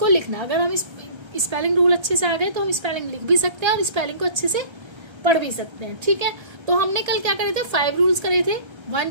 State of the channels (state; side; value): late; left; 1.3 ms